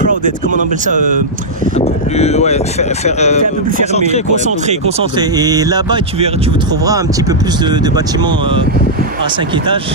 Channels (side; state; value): both; normal; correlation -0.08